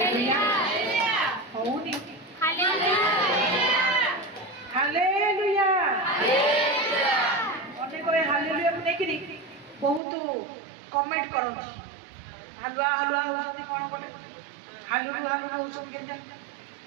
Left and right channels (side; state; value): left; drops out; at 10.0 s